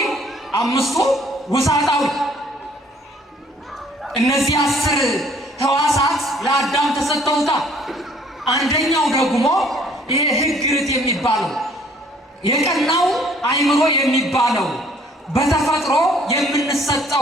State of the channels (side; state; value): both; normal; correlation 0.59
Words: 5ቱ ውሳጣዊ። እነዚህ 10 ሕዋሳት ለአዳም ተሰጠውታል። አንደኛው ደግሞ ይሄ ሕግ ርት የሚባለው የቀናው አእምሮ የሚባለው በተፈጥሮ